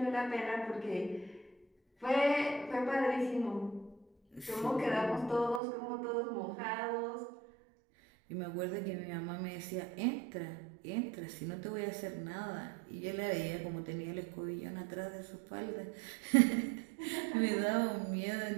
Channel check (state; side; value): drops out; left; at 5.6 s